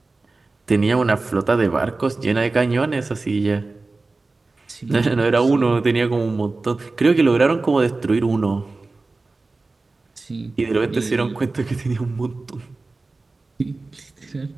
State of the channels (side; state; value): left; quieter; 3.5 dB